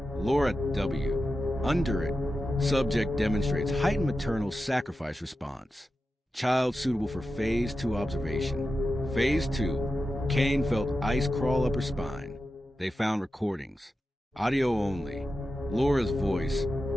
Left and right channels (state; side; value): normal; both; correlation 0.91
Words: Laura W. Under it, subject demonstrates heightened maternal sacrifice response. Child suitable for Phase 2 observation. Phase 2, Kane felt ice crawl up her spine. They found recordings, audio only. Laura's voice,